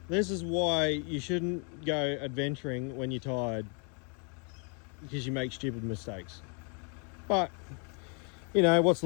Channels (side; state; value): right; quieter; 39.5 dB